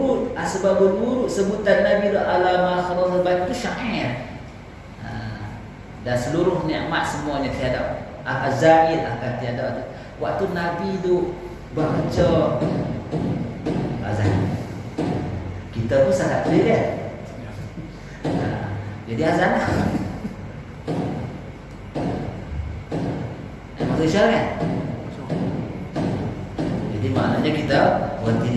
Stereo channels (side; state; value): both; identical; correlation 1.00